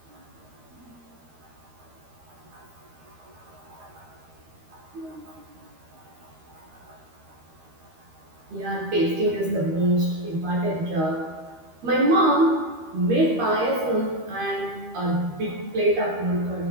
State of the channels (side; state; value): left; late; 13 ms